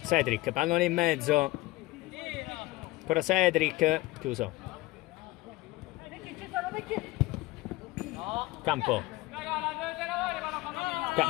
Cedric, pallone in mezzo. Ancora Cedric. Chiuso. Campo.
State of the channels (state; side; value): quieter; right; 19.3 dB